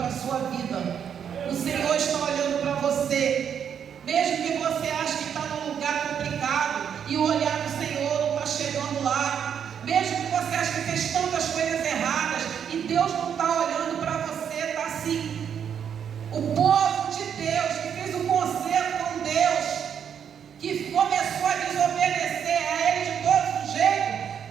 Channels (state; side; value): quieter; left; 8.1 dB